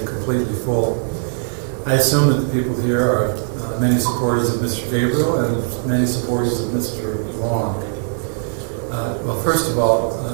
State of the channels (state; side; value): silent; left; 61 dB below the other